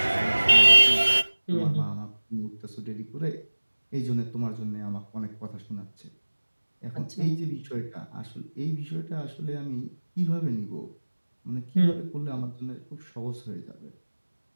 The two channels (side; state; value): both; inverted; correlation -1.00